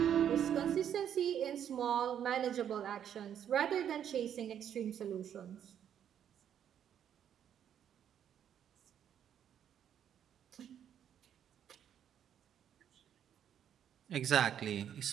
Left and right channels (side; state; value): left; quieter; 9.4 dB